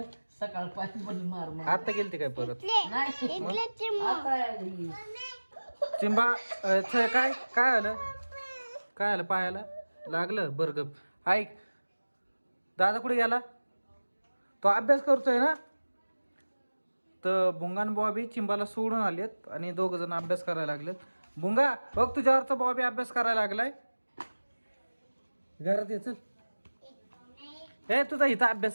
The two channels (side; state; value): both; inverted; correlation -1.00